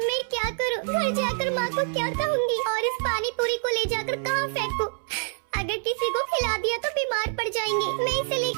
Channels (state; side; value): silent; left; 61 dB below the other